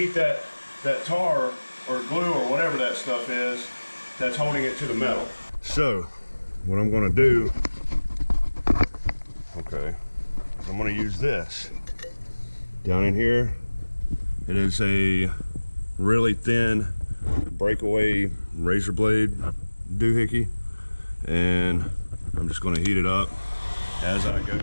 that tar or glue or whatever that stuff is that's holding it to the metal. So, what I'm gonna do, okay, is I'm gonna use this. Down in here, it is a really thin breakaway razor blade doohickey, and I'm just going to heat it up as I go.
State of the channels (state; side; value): inverted; both; correlation -1.00